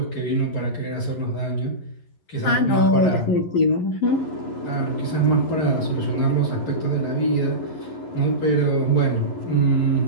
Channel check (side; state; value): right; late; 11 ms